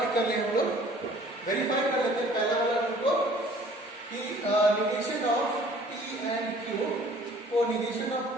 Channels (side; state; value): both; normal; correlation 0.53